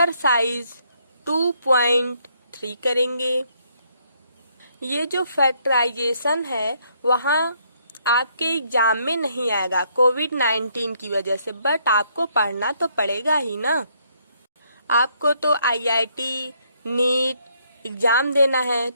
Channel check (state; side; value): inverted; both; correlation -0.70